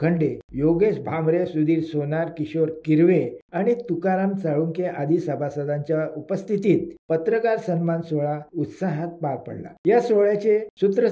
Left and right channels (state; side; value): identical; both; correlation 1.00